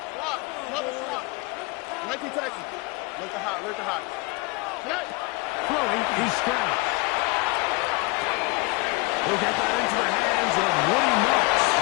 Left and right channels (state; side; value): quieter; right; 25.9 dB